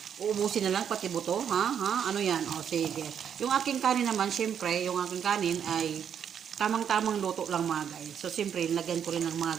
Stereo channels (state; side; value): quieter; left; 8.3 dB